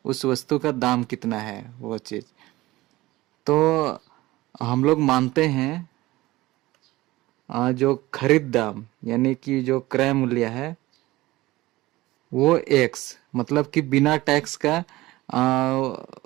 उस वस्तु का दाम कितना है वो चीज। तो हम लोग मानते हैं जो खरीद दाम यानी कि जो क्रय मूल्य है वो x, मतलब कि बिना टैक्स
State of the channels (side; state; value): left; quieter; 18.6 dB